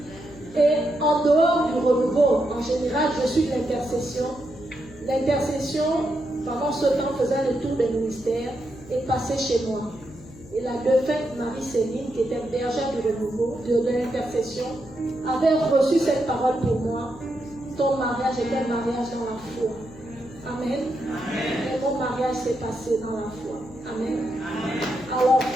Et en dehors du renouveau, en général, je suis de l'intercession. L'intercession, pendant ce temps, faisait le tour des ministères et passait chez moi. Et la défunte Marie-Céline, qui était bergère du renouveau, de l'intercession, avait reçu cette parole pour moi. Ton mariage était un mariage dans la foi. Amen. Et mon mariage s'est passé dans la foi. Amen. Alors,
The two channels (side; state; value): left; noise; hum, 20 dB below the sound